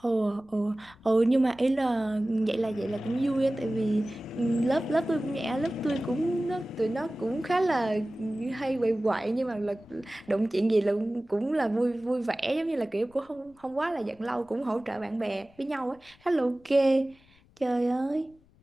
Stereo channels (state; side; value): noise; left; rumble, 30 dB below the sound